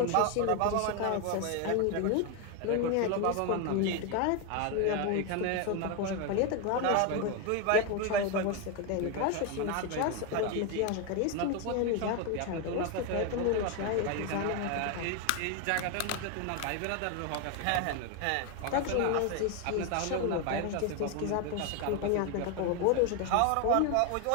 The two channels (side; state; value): both; different; correlation 0.01